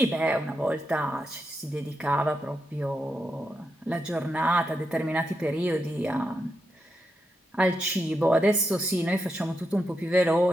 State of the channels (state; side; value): normal; both; correlation 0.85